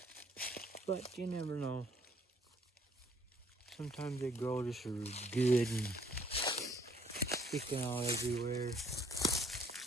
But you never know. Sometimes they grow just good and sticking out everywhere.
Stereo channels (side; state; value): both; normal; correlation 0.65